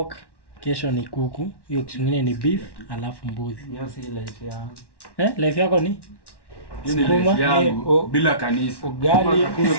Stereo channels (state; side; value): late; right; 1.1 ms